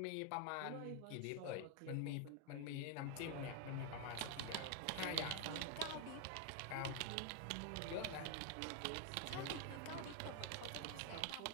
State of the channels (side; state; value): both; different; correlation 0.01